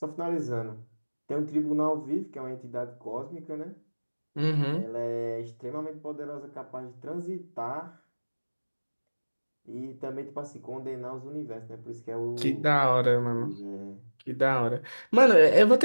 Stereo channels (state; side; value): inverted; both; correlation -1.00